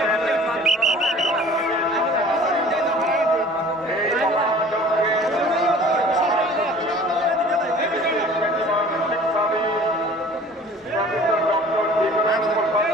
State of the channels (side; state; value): both; normal; correlation 0.47